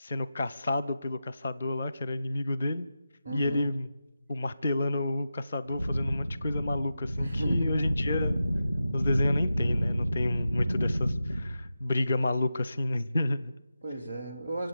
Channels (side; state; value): both; inverted; correlation -0.91